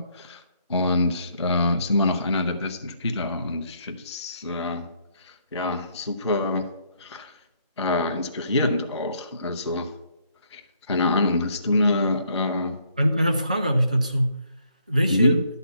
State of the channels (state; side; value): inverted; both; correlation -0.68